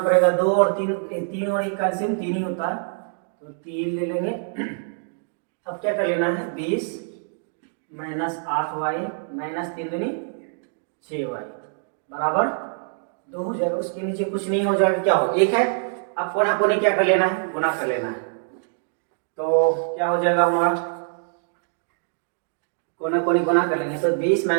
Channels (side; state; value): left; silent; digital silence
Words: पड़ेगा, 2 और 3 और 1 का एलसीएम 3 ही होता है, तो 3 ले लेंगे। अब क्या कर लेना है, 20 माइनस 8y माइनस 3 दूनी 6y बराबर 2 हो जाएगा। उसके नीचे कुछ नहीं हो जाएगा, क्या हो 1 है। अब कोना कोने क्या कर लेना है, गुना कर लेना है, तो क्या हो जाएगा हमारा, कोना कोने गुना कर लेंगे, तो 20